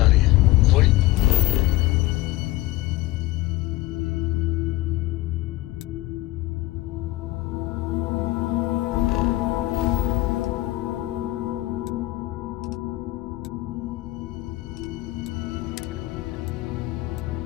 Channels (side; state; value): right; quieter; 18.4 dB